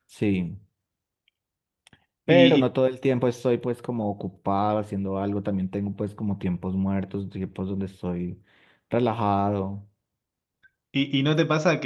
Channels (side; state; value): both; identical; correlation 1.00